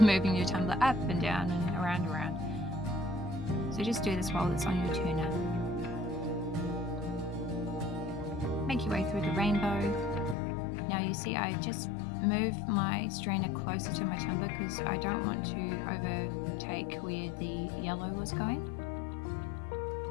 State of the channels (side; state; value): right; drops out; at 10.4 s